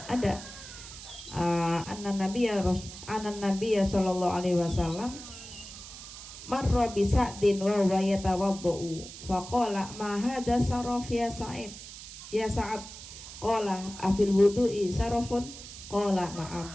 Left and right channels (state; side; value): noise; right; hiss, 13 dB below the sound